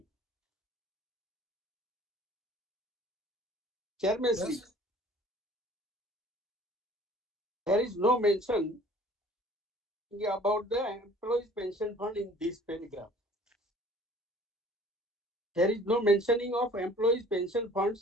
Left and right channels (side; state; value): both; normal; correlation 0.51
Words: Chairman Sri, Yes. there is no mention about the employees pension fund in this paragraph. There is no mentioning of employees pension